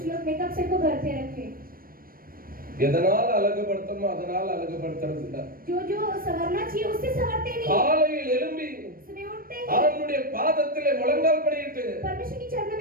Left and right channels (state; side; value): late; left; 0.42 ms